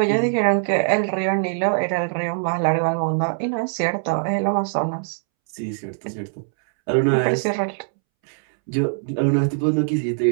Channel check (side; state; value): left; silent; 64 dB below the other